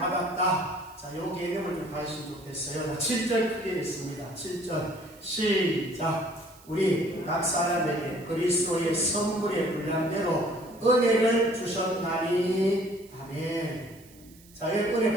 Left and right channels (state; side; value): noise; right; hiss, 25 dB below the sound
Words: 자, 요 개념을 좀 가지시면 좋겠어요. 7절 크게 있습니다. 7절 시작. 우리 각 사람에게 그리스도의 선물의 분량대로 은혜를 주셨나니. 아멘. 자, 여러분 은혜